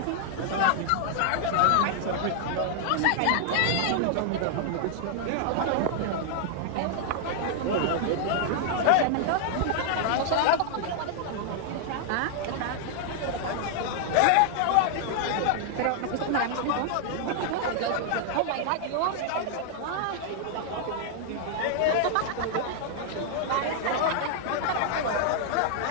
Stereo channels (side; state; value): both; different; correlation 0.00